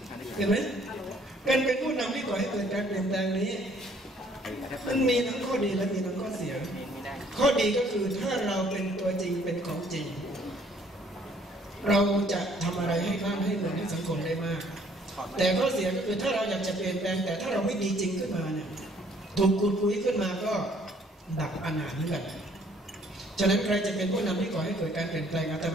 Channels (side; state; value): both; normal; correlation 0.61